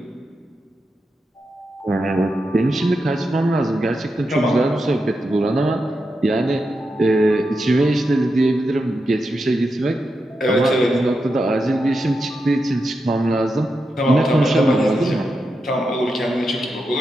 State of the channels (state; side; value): normal; both; correlation 0.87